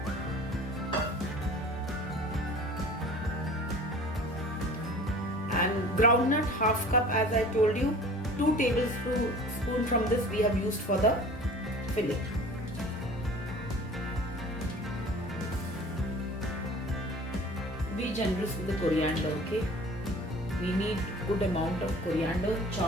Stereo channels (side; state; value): both; normal; correlation 0.44